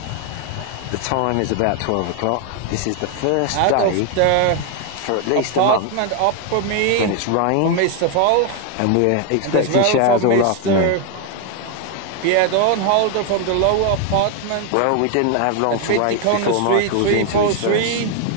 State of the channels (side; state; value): both; different; correlation 0.01